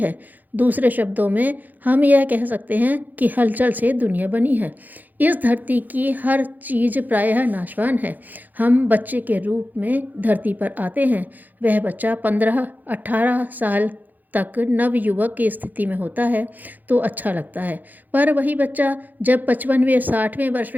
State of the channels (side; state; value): left; late; 0.084 ms